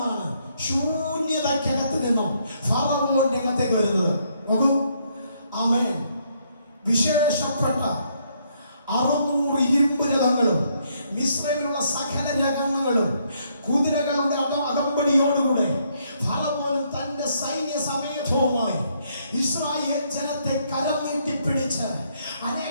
ശൂന്യതയ്ക്കകത്ത് നിന്നും ഫറവോന്റെ അകത്തേക്ക് വരുന്നത്. നോക്കൂ, ആമേൻ. വിശേഷപ്പെട്ട 600 ഇരുമ്പ് രഥങ്ങളും മിസ്രൈമിലുള്ള സകല രഥങ്ങളും കുതിരകളുടെ അകമ്പടിയോടുകൂടെ ഫറവോൻ തന്റെ സൈന്യ സമേതവുമായി ഇസ്രായേൽ ജനത്തെ കരം നീട്ടിപ്പിടിച്ച്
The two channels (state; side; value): inverted; both; correlation -0.71